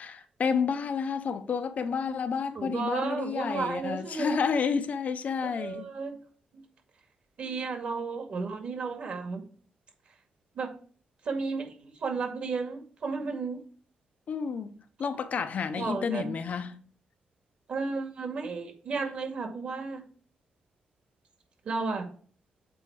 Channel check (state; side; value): normal; both; correlation 0.73